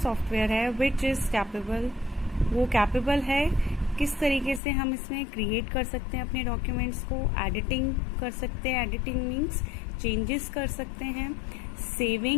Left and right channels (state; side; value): drops out; right; at 4.6 s